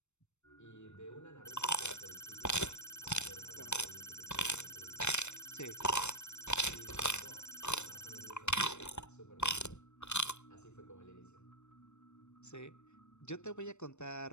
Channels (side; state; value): right; late; 0.82 ms